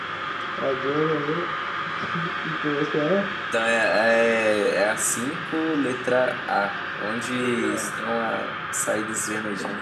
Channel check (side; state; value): both; identical; correlation 1.00